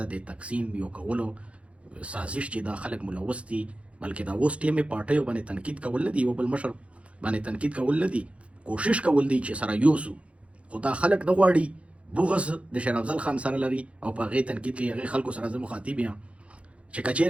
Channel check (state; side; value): late; left; 0.062 ms